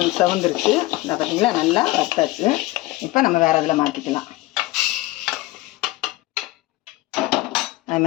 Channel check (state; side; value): quieter; right; 18.8 dB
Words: செவந்துருச்சு. இந்த பார்த்தீங்களா, நல்லா வறுத்தாச்சு. இப்போ நம்ம வேறு இதில் மாற்றிக்கலாம். அது